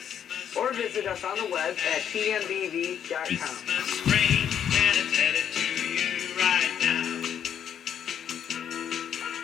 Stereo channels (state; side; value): quieter; right; 9.0 dB